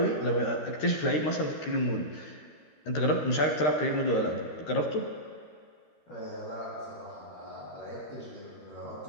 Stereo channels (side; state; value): right; late; 13 ms